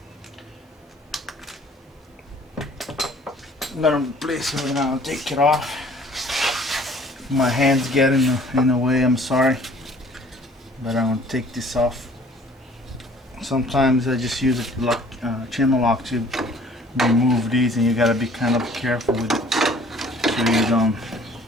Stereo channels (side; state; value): both; normal; correlation 0.54